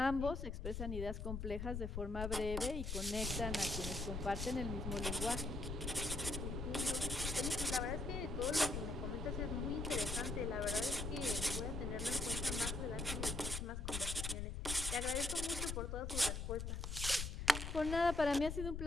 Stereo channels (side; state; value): left; noise; rumble, 3 dB below the sound